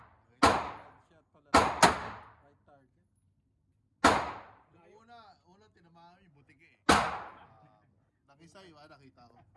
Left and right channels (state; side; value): identical; both; correlation 1.00